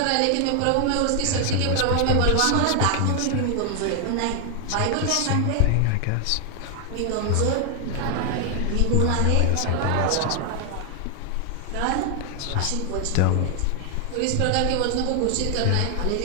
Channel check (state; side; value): different; both; correlation 0.00